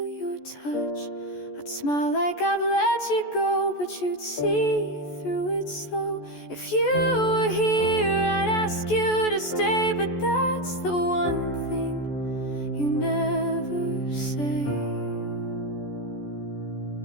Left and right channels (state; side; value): late; right; 14 ms